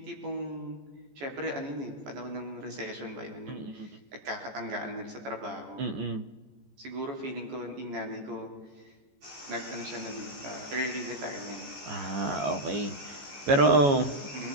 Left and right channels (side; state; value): left; late; 14 ms